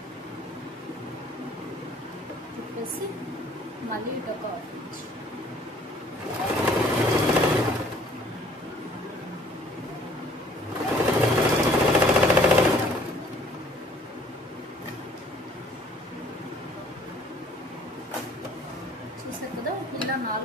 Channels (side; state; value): both; normal; correlation 0.57